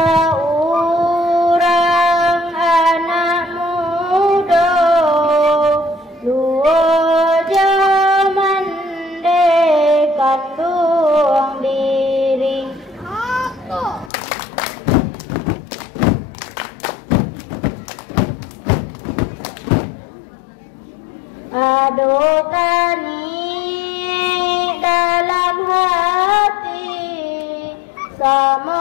anak muda luar zaman dekandung diri aduh kani dalam hati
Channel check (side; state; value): right; drops out; at 14.1 s